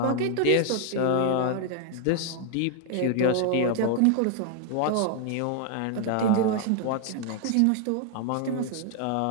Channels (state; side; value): different; both; correlation 0.00